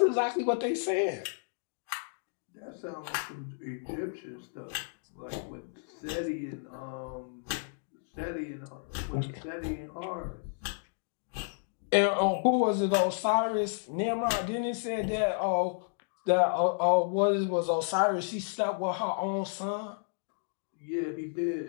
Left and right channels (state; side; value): silent; right; digital silence